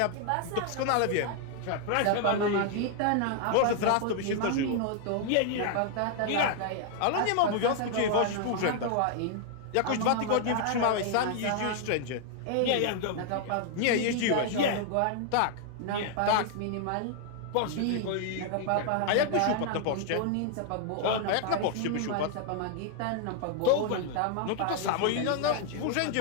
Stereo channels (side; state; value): both; different; correlation 0.00